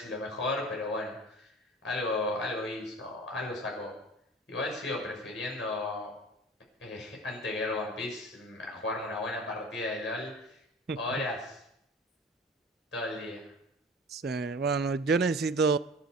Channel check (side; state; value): both; normal; correlation 0.39